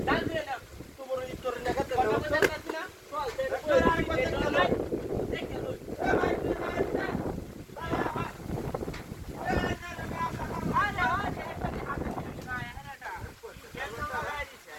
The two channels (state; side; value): identical; both; correlation 1.00